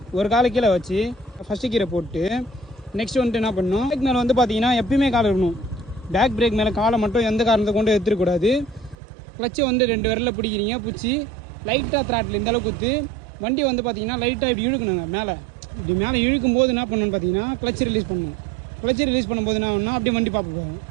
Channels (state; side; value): drops out; left; at 9.0 s